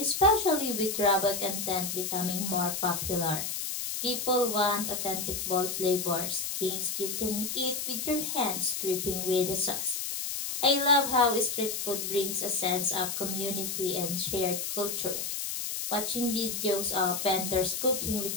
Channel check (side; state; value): left; noise; hiss, 3 dB below the sound